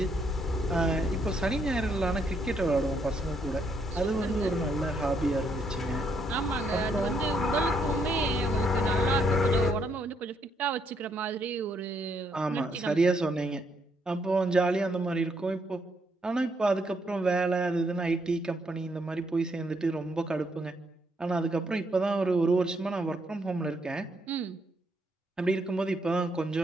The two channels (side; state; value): both; normal; correlation 0.74